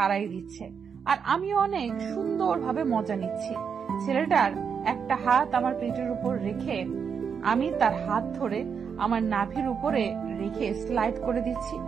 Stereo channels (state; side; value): quieter; left; 6.6 dB